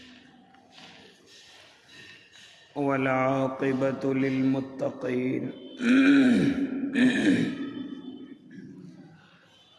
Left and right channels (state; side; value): identical; both; correlation 1.00